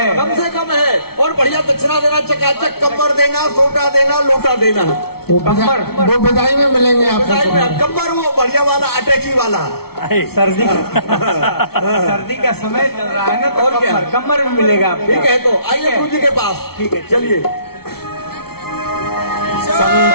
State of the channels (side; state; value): right; late; 0.95 ms